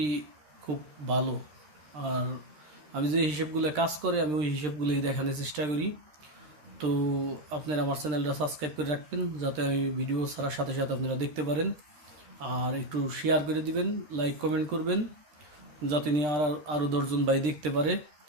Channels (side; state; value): left; late; 13 ms